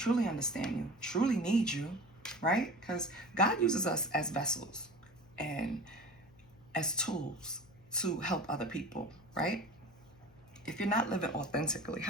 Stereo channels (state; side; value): noise; left; hum, 26 dB below the sound